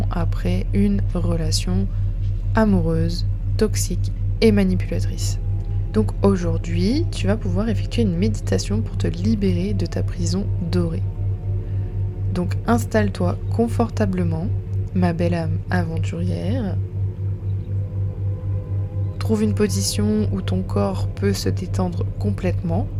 après une relation amoureuse, toxique et manipulatrice. Donc aujourd'hui, tu vas pouvoir effectuer une méditation pour te libérer de ta prison dorée. Donc installe-toi confortablement, ma belle âme aventurière. Trouve une position où ton corps peut se détendre complètement.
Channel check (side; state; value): both; identical; correlation 1.00